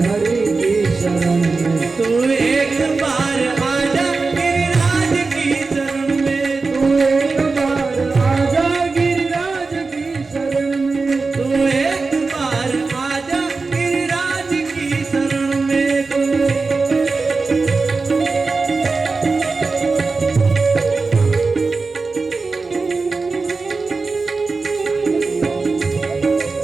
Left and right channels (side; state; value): left; quieter; 4.1 dB